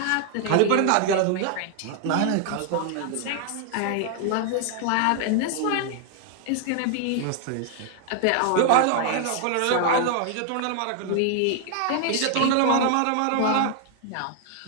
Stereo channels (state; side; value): different; both; correlation 0.00